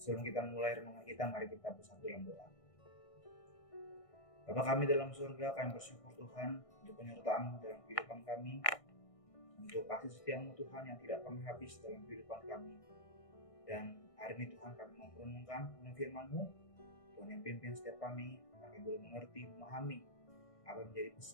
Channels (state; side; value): late; right; 1.6 ms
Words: kita mulai renungan kita, mari kita bersatu dalam doa. Bapa kami dalam surga, kami bersyukur Tuhan untuk penyertaan-Mu dalam kehidupan kami, untuk kasih setia-Mu Tuhan yang tidak pernah habis dalam kehidupan kami. Dan hari ini Tuhan kami mau merenungkan firman-Mu, Tuhan yang pimpin setiap kami, kami boleh mengerti, memahami apa yang menjadi